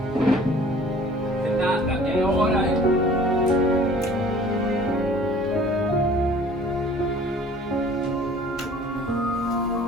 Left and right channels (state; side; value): normal; both; correlation 0.50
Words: Renata, é hora!